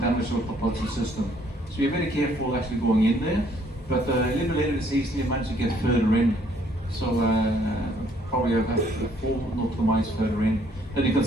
our propulsion system. So we're very careful actually going in there, but a little bit later in the season we managed to get further in. So probably about 4 nautical miles further in. Then you can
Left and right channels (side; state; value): both; normal; correlation 0.64